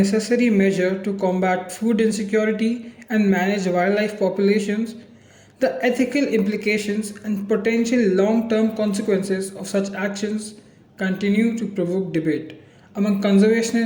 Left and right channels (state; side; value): identical; both; correlation 1.00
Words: measure to combat food insecurity and manage wildlife populations, the ethical implications and potential long term consequences of such actions continue to provoke debate among